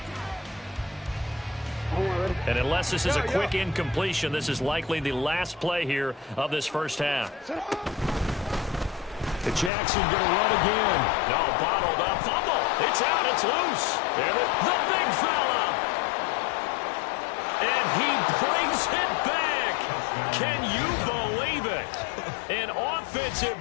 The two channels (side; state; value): right; drops out; at 9.7 s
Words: And unless this is a quick incompletion, this is likely the last play here of this first half. Jackson going to run again. No, bottled up. Fumble. It's out. It's loose. And the big fella. And he brings it back. Can you believe it? An offensive